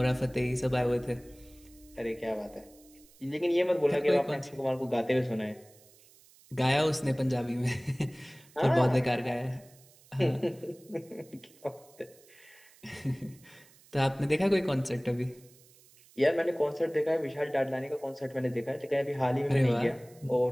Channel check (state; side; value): noise; right; hiss, 26 dB below the sound